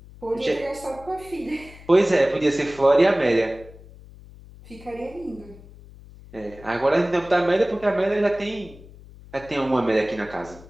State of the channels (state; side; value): noise; left; hum, 20 dB below the sound